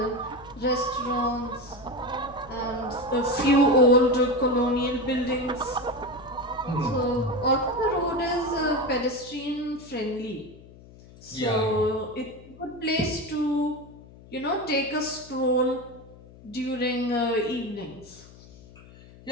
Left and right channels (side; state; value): left; noise; hum, 21 dB below the sound